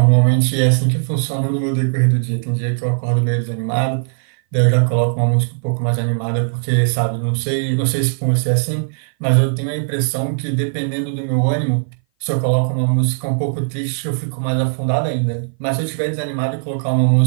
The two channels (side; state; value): left; silent; 58 dB below the other